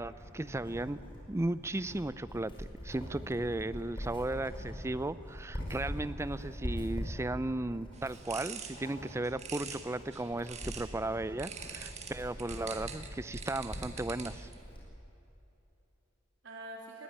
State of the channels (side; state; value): both; normal; correlation 0.77